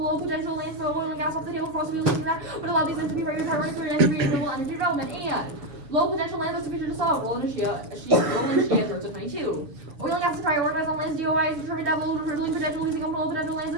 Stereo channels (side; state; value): left; late; 7.0 ms